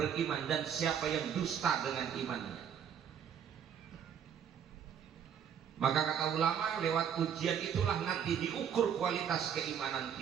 dan siapa yang dusta dengan imannya. Maka kata ulama, lewat ujian itulah nanti diukur kualitas keimanan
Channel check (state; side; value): quieter; left; 8.2 dB